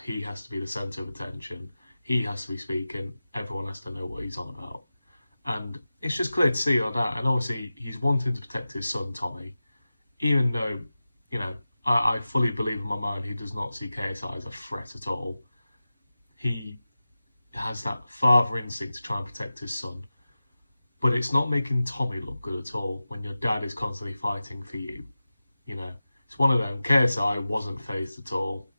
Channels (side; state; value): both; inverted; correlation -0.95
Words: he has to be the centre of attention. He has to be speaking. Everyone has to know what he's on about. And it's just clear to see like that. And obviously, he's wanting to protect his son, Tommy. Even though, I fully believe in my mind he does not see KSI as a threat at all. He has that father instinct to try and protect his son. But it's not making Tommy look good at all when your dad is constantly fighting for you. It's one of them. KSI wasn't fazed at all